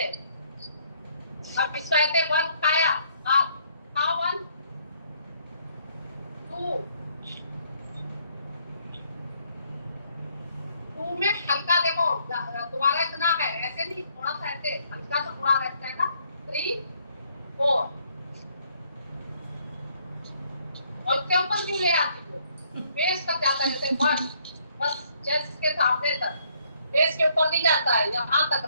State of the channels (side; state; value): both; inverted; correlation -0.67